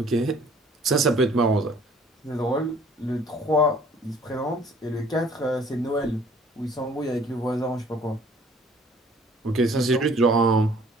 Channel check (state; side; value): normal; both; correlation 0.55